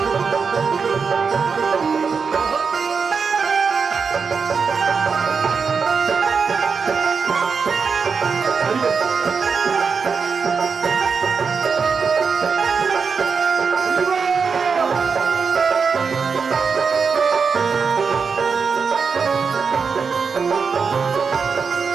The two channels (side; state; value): left; quieter; 5.5 dB